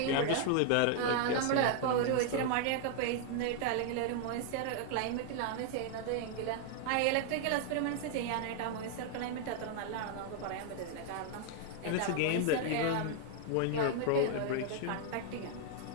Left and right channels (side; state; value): both; different; correlation 0.00